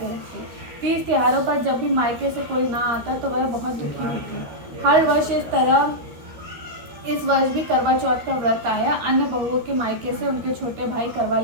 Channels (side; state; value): left; late; 13 ms